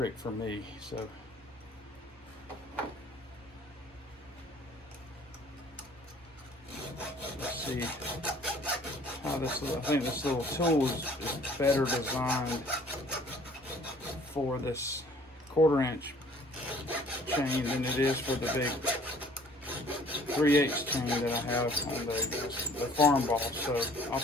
for me. So let's see how this little, I think this little tool is better designed for this 1/4 inch chain than it is for the big 3/8 chain that I have on the farm boss. So I'll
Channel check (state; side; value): normal; both; correlation 0.55